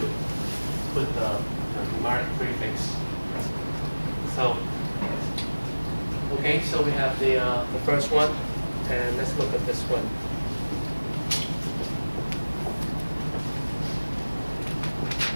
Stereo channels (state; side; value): inverted; both; correlation -1.00